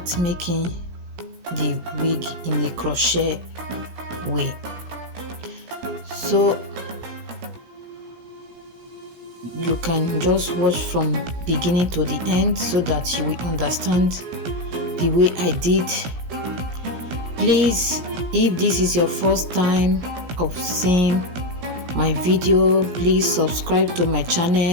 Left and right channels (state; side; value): late; left; 17 ms